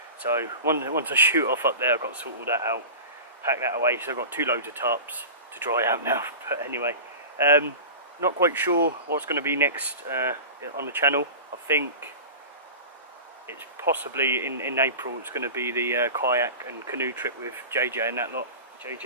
So once I shoot off up there, I've got to sort all that out, pack that away. So I've got 2 loads of tarps to dry out now. But anyway, not quite sure what's going to be next on the channel. I think it's possibly in April. It's going to be the kayak and canoe trip with JJ and that lot,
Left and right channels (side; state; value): both; inverted; correlation -0.33